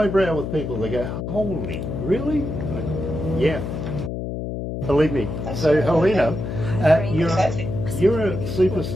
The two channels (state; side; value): noise; left; hum, 5 dB below the sound